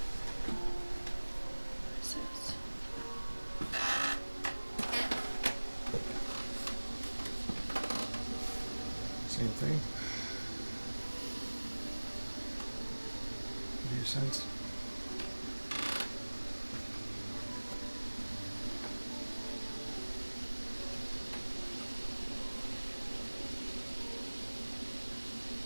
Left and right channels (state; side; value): inverted; both; correlation -1.00